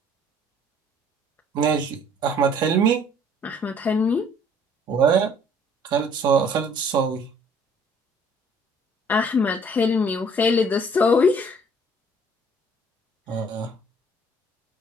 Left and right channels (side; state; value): both; normal; correlation 0.57